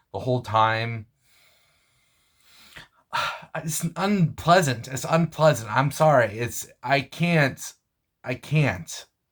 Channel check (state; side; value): identical; both; correlation 1.00